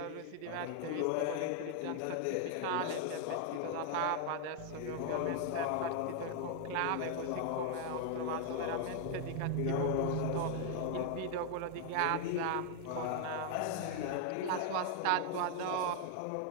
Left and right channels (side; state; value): both; different; correlation 0.00